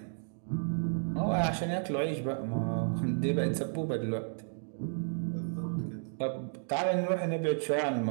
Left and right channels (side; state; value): left; silent; digital silence